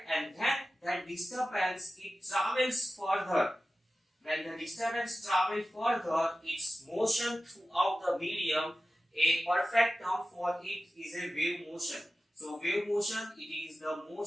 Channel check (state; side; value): normal; both; correlation 0.94